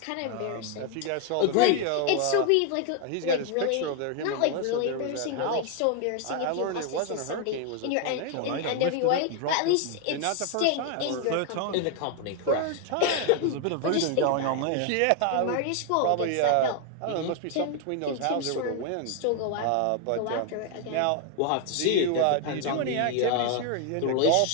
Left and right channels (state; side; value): different; both; correlation 0.01